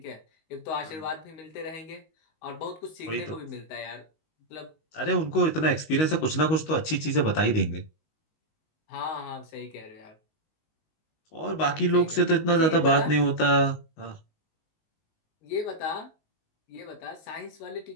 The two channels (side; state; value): right; late; 19 ms